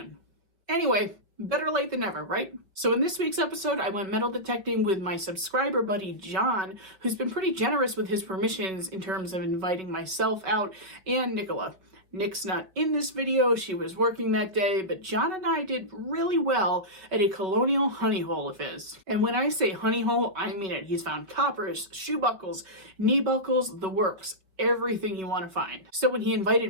Anyway, better late than never, right? So in this week's episode, I went metal detecting with my subscriber buddy, John, who's been pretty generous with his permissions in terms of inviting myself out and Nicola. Nick's not in this video, she was working that day, but John and I did really well at a Colonial honey hole of his. And when I say honey hole, I mean it. He's found coppers, shoe buckles, knee buckles, the works, everything you want to find. So when he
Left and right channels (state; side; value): late; left; 5.1 ms